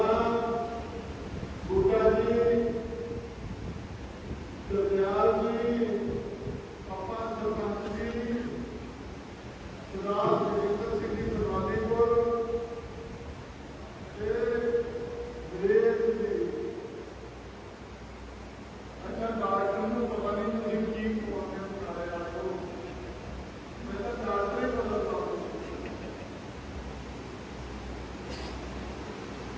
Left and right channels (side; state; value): both; identical; correlation 1.00